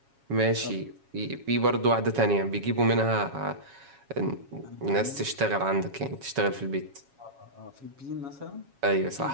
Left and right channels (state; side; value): late; left; 7.3 ms